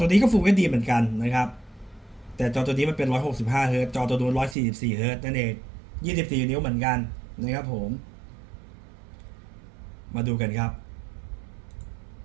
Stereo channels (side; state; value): left; drops out; at 4.5 s